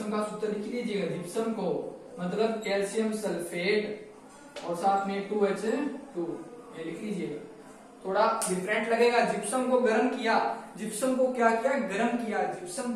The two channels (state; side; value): identical; both; correlation 1.00